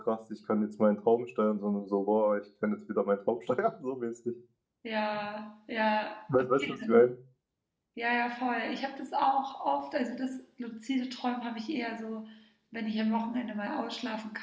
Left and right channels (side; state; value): both; identical; correlation 1.00